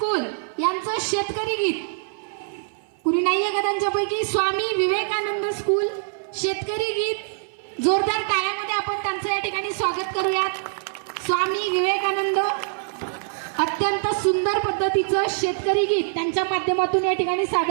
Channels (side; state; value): left; silent; 58 dB below the other